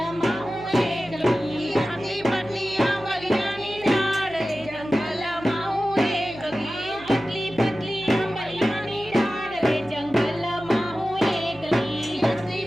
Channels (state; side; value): noise; right; hum, 20 dB below the sound